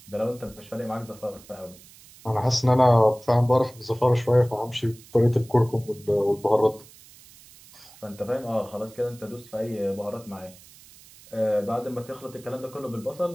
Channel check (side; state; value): right; noise; hiss, 23 dB below the sound